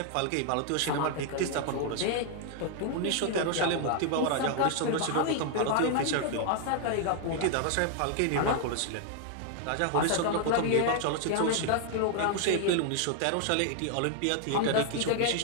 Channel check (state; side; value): different; both; correlation 0.00